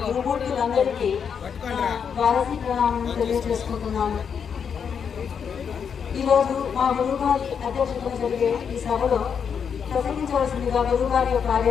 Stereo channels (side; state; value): right; quieter; 7.0 dB